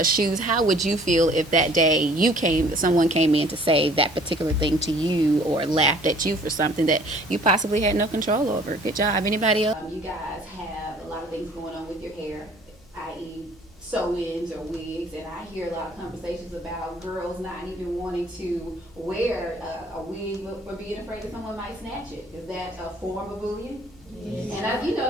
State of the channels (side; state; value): both; normal; correlation 0.54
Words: shoes. How would you feel if that day someone came in to say that particular thing to you, or laughed at you for something that you possibly had no control over? Good job. Anybody else? You guys have a lot of things going on with your hair, i.e. sew-ins or wigs, and I hear a lot of conversations about girls not even wanting to wear a wig for being afraid that someone might snatch it. Is that a form of bullying? Yes. And